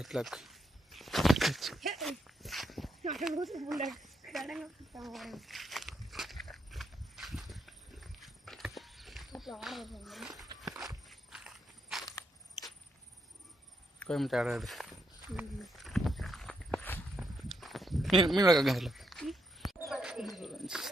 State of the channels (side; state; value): both; normal; correlation 0.79